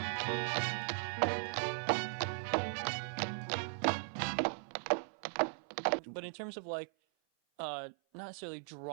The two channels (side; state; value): left; silent; 52 dB below the other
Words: But in terms of like, not necessarily